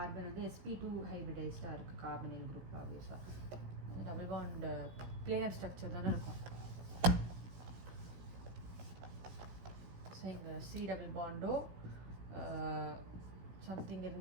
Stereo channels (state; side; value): late; left; 16 ms